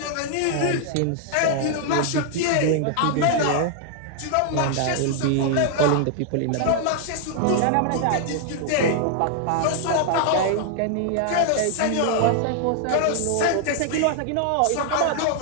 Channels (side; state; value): both; different; correlation 0.00